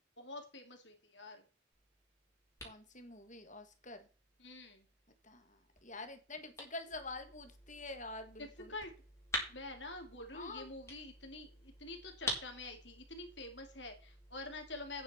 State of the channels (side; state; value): both; normal; correlation -0.13